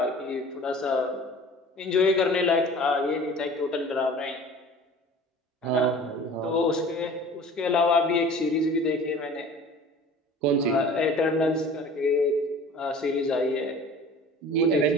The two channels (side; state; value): both; normal; correlation 0.44